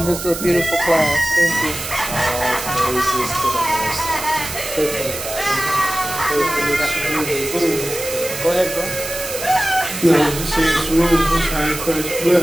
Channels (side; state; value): right; noise; hiss, 8 dB below the sound